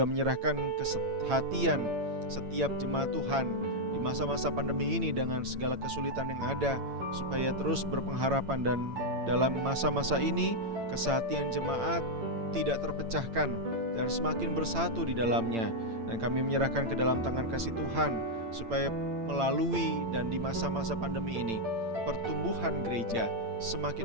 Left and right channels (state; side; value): late; left; 8.8 ms